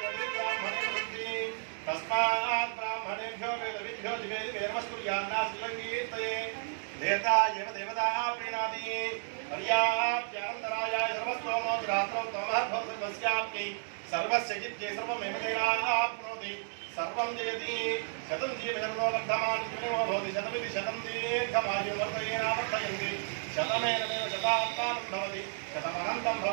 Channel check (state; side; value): silent; left; digital silence